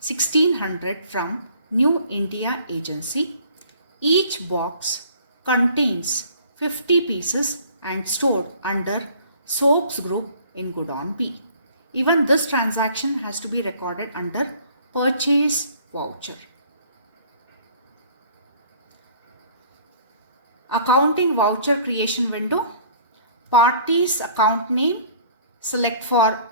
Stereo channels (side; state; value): both; inverted; correlation -0.54